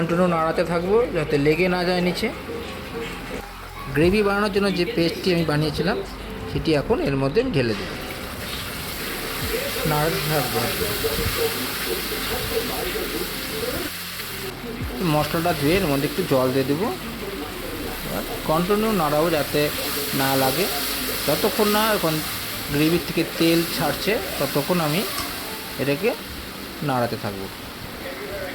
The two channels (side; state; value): both; identical; correlation 1.00